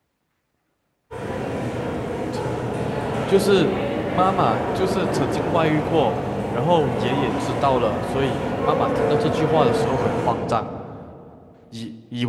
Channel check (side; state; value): both; identical; correlation 1.00